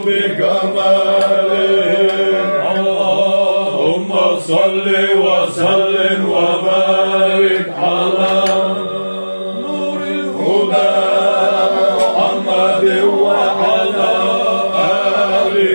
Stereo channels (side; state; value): both; inverted; correlation -1.00